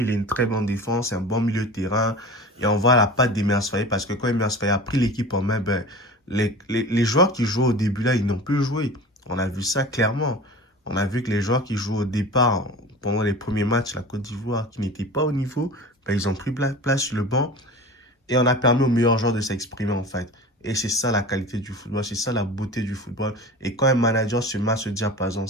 il a une très bonne défense, un bon milieu de terrain. Et on voit la patte d'Emers Faye parce que quand Emers Faye a pris l'équipe en main, ben, les joueurs qui jouaient au début là, ils n'ont plus joué. On a vu ça clairement. On a vu que les joueurs qui jouent au départ, pendant les premiers matchs, la Côte d'Ivoire, qui n'étaient pas au niveau, ben, ils ont pris place sur le banc et on a permis aux meilleurs joueurs de s'exprimer en fait. Et c'est ça la qualité du football, c'est ça la beauté du football. Et quand un manager se met à se dire, par exemple,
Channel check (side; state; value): both; normal; correlation 0.36